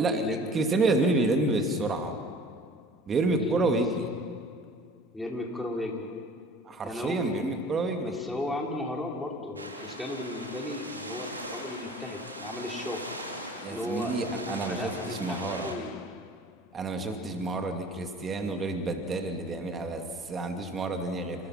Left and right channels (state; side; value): normal; both; correlation 0.46